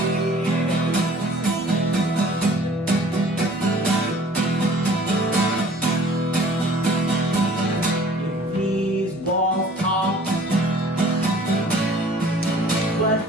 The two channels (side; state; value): both; normal; correlation 0.51